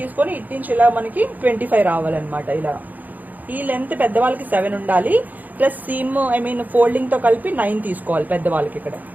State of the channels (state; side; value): late; left; 0.082 ms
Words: ఇటు నుంచి ఇలా మనకి 25 రావాలన్నమాట. ఇలా ఈ లెంత్ పెద్దవాళ్ళకి 7 ఉండాలి. ప్లస్ సీమ్ ఫోల్డింగ్ తో కలిపి 9 తీసుకోవాలి పెద్దవాళ్ళకి ఇక్కడ.